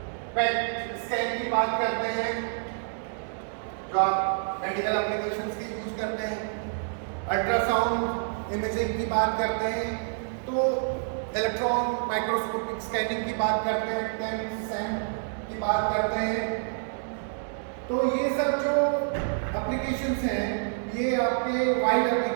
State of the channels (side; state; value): left; silent; digital silence